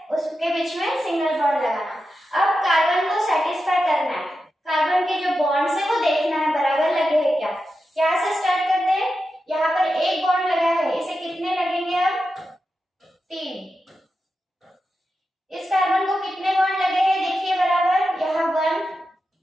उसके बीच में सिंगल बॉन्ड लगाना। अब कार्बन को सेटिस्फाई करना है, कार्बन के जो बॉन्ड्स है वो देखना है बराबर लगे हैं क्या। यहाँ से स्टार्ट करते हैं, यहाँ पर एक बॉन्ड लगा है, इसे कितने लगेंगे, अब 3। इस कार्बन को कितने बॉन्ड लगे हैं, देखिए बराबर, यहाँ 1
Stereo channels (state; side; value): normal; both; correlation 0.90